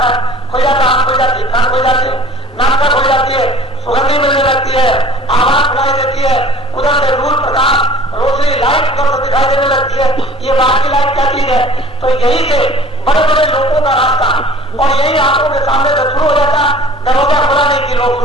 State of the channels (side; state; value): both; normal; correlation 0.47